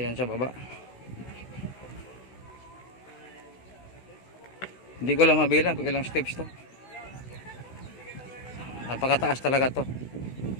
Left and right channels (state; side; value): late; right; 16 ms